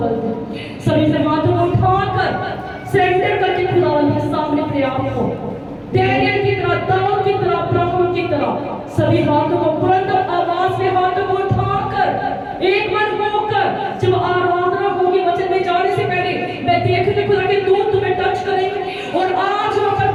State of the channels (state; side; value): identical; both; correlation 1.00